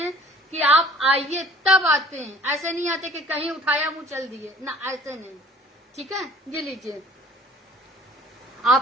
कि आप आइए तब आते हैं, ऐसे नहीं आते कि कहीं उठाया मुंह चल दिए ना, ऐसे नहीं, ठीक है। ये लीजिए,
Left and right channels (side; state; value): both; normal; correlation 0.52